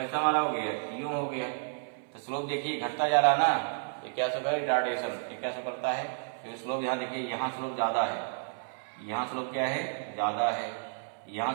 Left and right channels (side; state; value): left; silent; 57 dB below the other